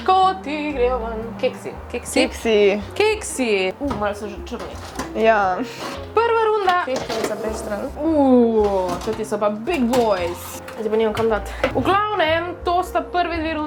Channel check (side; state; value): both; identical; correlation 1.00